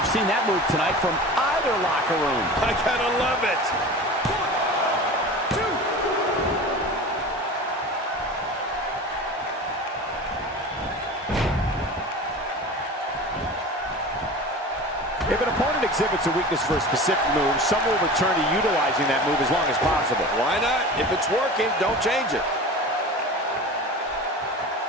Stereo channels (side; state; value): both; normal; correlation 0.35